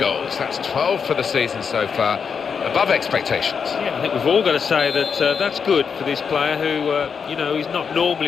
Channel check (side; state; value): right; quieter; 6.3 dB